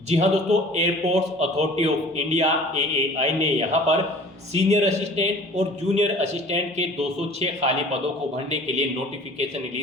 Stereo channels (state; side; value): normal; both; correlation 0.47